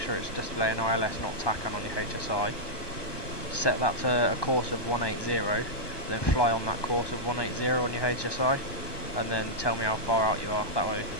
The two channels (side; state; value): right; late; 1.2 ms